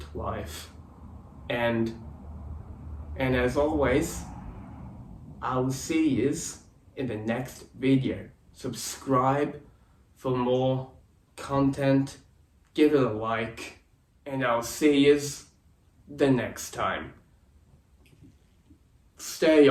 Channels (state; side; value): identical; both; correlation 1.00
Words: Life, and as always, I will see you in the next video. Subscribe for more content, give it a like, and I'll see you the next time. Stay